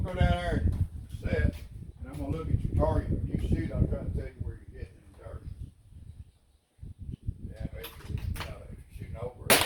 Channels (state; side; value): identical; both; correlation 1.00